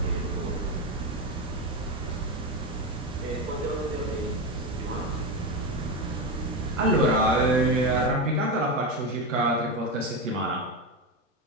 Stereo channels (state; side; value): normal; both; correlation 0.15